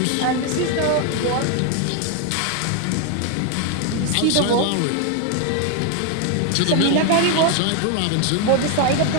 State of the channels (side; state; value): both; different; correlation 0.01